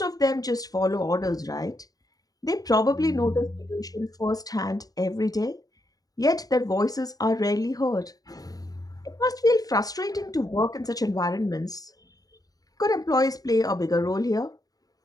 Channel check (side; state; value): right; late; 0.18 ms